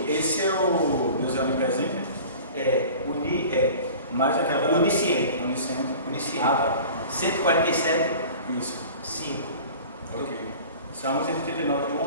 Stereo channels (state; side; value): inverted; both; correlation -0.41